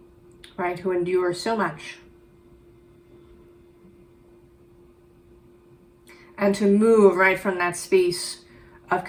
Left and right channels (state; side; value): identical; both; correlation 1.00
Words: Right, who endure so much. And to move right from that space of